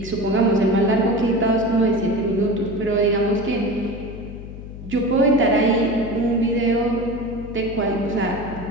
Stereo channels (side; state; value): left; noise; hum, 12 dB below the sound